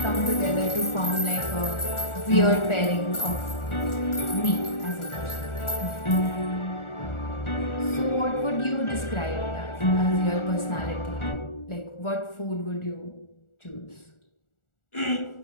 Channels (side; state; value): right; late; 1.4 ms